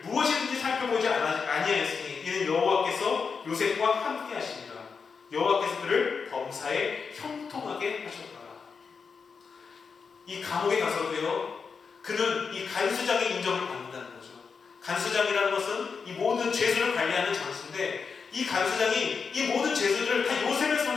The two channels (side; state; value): right; quieter; 5.5 dB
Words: 무엇이든지 살펴보지 아니하였으니 이는 여호와께서 요셉과 함께 하시니라. 여호와께서 그를 범사에 형통하게 하셨더라. 이 감옥에 가서도요, 그는 이 간수장의 인정을 받는다는 거죠. 간수장이라는 것은 이 모든 죄수를 관리하는 장수인데 이 간수장이 이 모든 죄수들을 다 요셉의